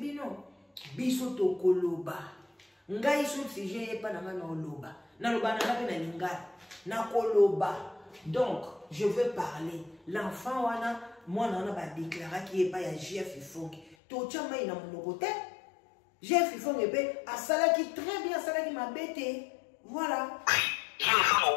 biso to koloba ngai sur sujet pas na ngana oloba na loba na pe na lingala na koloba donc je veux parler l'enfant wana moi na ba déclarer qui est pas ya Jeff Ifongi to chama ina monoko te Jeff Ifongi pe asala qui très bien asala qui m'a bêté voilà je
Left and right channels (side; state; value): right; drops out; at 14.0 s